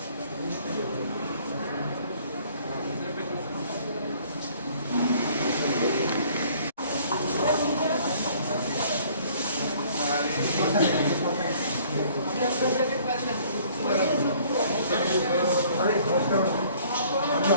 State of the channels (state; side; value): inverted; both; correlation -0.56